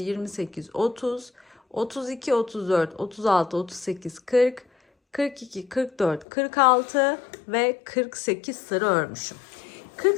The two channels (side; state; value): right; drops out; at 6.2 s